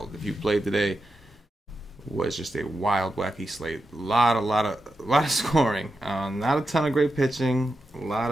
If you played today, it was just a wild, wacky slate. A lot of scoring. Not a ton of great pitching. A lot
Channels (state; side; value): normal; both; correlation 0.88